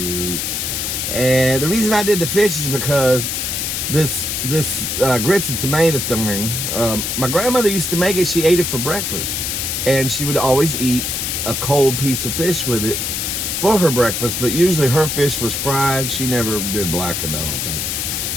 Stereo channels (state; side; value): noise; left; hiss, 2 dB below the sound